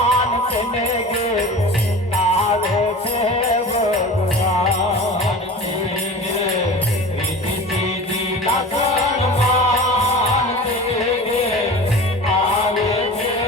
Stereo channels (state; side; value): normal; both; correlation 0.36